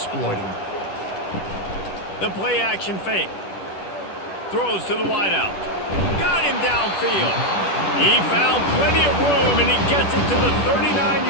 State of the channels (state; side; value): late; right; 10 ms